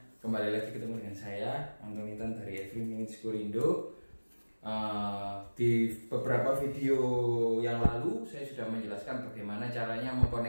kembali lagi ketemu dengan saya Anton Intan dari Every Minute Indo. Di beberapa video yang lalu saya sudah menjelaskan bagaimana caranya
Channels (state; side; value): inverted; both; correlation -1.00